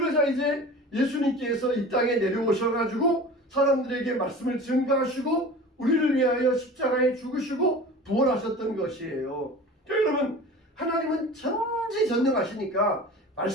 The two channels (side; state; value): both; normal; correlation 0.38